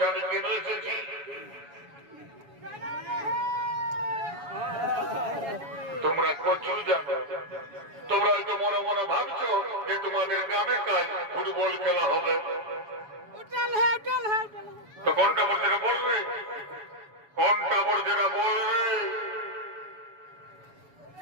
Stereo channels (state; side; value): late; left; 7.1 ms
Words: আমি কেন এসেছি? তোমরা কচু জানো, তোমরা হয়তো মনে মনে ভাবছো যে তোমাদের গ্রামে কাল ফুটবল খেলা হবে। তো কোনটা বল যেটা বলবে, কোনটা বল যেটা বলবে?